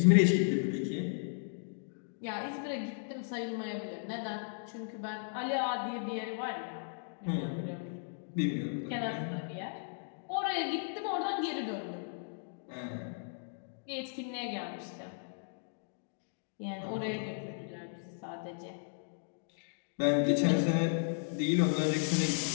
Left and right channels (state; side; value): silent; right; digital silence